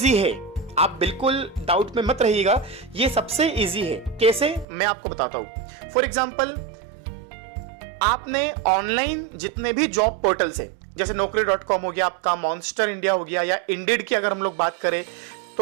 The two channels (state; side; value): drops out; left; at 4.7 s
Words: है, आप बिल्कुल डाउट में मत रहिएगा, ये सबसे इजी है। कैसे, मैं आपको बताता हूं। फॉर एग्जाम्पल आपने ऑनलाइन जितने भी जॉब पोर्टल्स है, जैसे naukri.com हो गया आपका, मॉन्स्टर इंडिया हो गया, या इंडीड की अगर हम लोग बात करें,